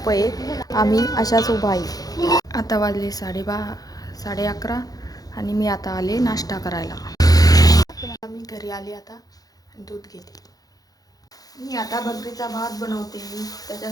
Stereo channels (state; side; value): late; right; 0.18 ms